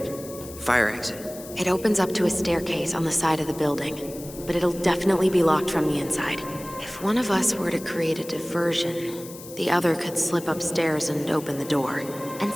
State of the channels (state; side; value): noise; left; hiss, 15 dB below the sound